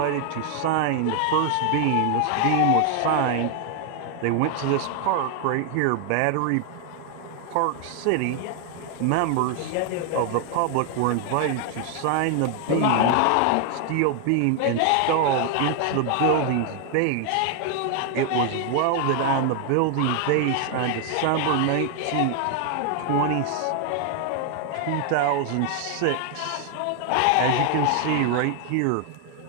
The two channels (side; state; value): both; different; correlation 0.00